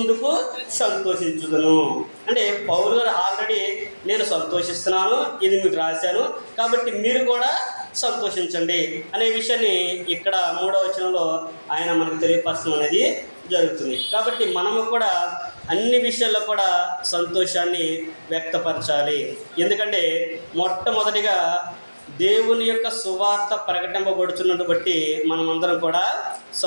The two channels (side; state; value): both; inverted; correlation -1.00